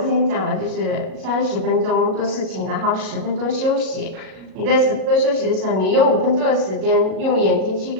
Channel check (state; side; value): late; left; 37 ms